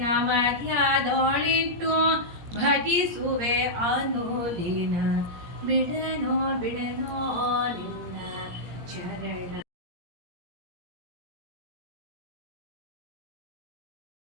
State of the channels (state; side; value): late; left; 17 ms